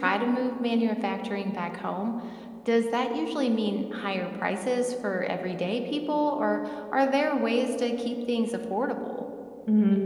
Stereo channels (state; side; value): identical; both; correlation 1.00